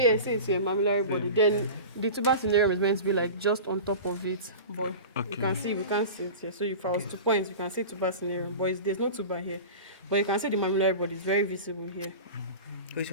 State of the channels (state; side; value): inverted; both; correlation -0.32